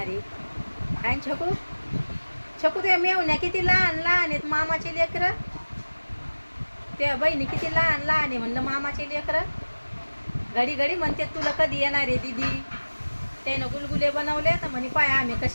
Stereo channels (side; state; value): both; inverted; correlation -1.00